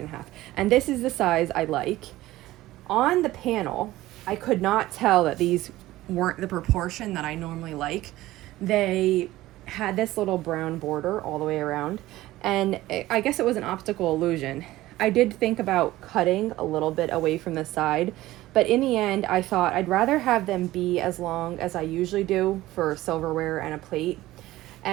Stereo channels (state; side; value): quieter; left; 16.6 dB